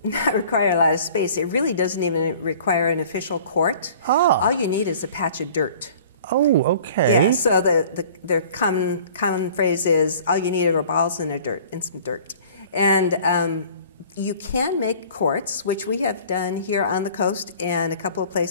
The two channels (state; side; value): inverted; both; correlation -0.49